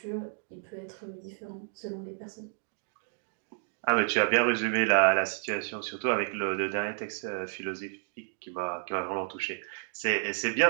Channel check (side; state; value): left; silent; digital silence